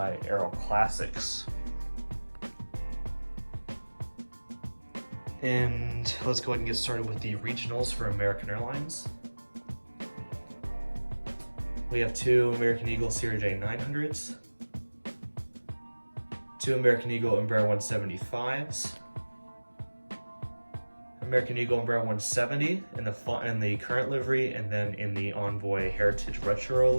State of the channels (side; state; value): both; inverted; correlation -1.00